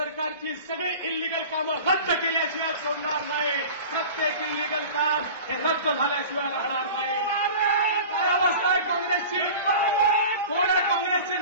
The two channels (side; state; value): both; inverted; correlation -0.37